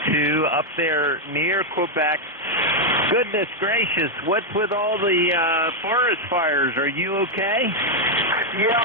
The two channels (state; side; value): normal; both; correlation 0.00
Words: 2 up there near Quebec. Goodness gracious, what's with all the forest fires? Are you okay?